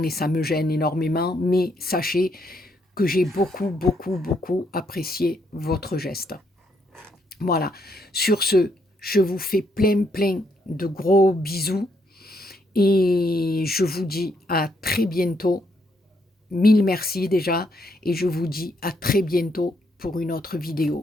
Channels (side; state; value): both; normal; correlation 0.74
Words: et ça me gêne énormément, mais sachez que j'ai beaucoup, beaucoup, beaucoup apprécié votre geste. Voilà. Sur ce, je vous fais plein, plein de gros bisous et je vous dis à très bientôt. Mille merci déjà et je vous dis à très bientôt pour une autre